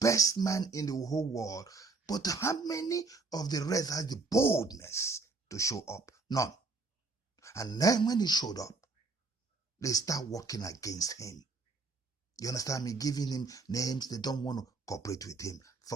man in the whole world, but how many of the rest has the boldness to show up? None. And then when he showed up, they start working against him. You understand me? Giving him names. They don't want to cooperate with him.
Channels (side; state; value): left; quieter; 3.9 dB